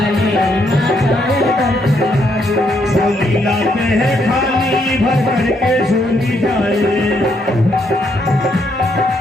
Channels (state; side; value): normal; both; correlation 0.74